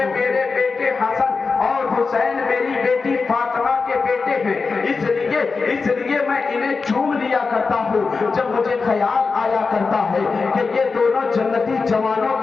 میرے بیٹے حسن اور حسین میری بیٹی فاطمہ کے بیٹے ہیں، اس لیے میں انہیں چوم لیا کرتا ہوں۔ جب مجھے خیال آیا کرتا ہے کہ یہ دونوں جنتی جوانوں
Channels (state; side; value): quieter; right; 4.5 dB